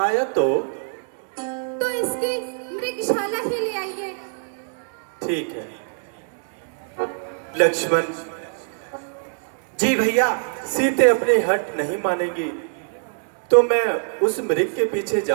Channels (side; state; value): left; silent; 63 dB below the other